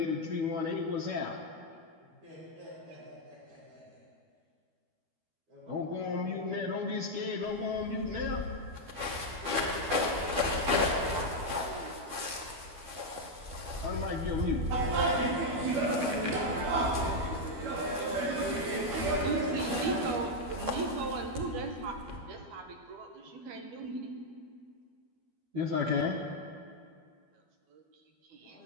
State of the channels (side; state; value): left; late; 12 ms